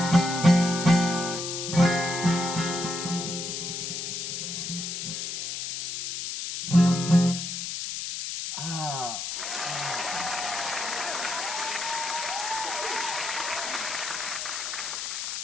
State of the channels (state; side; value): noise; left; hiss, 4 dB below the sound